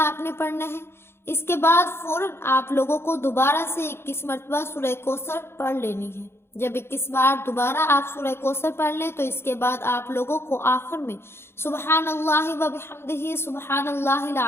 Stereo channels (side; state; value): right; late; 0.12 ms